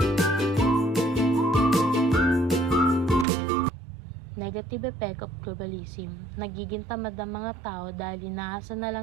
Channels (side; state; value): left; drops out; at 3.2 s